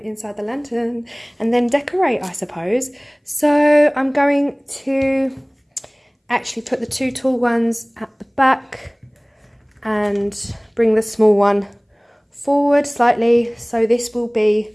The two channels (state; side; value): identical; both; correlation 1.00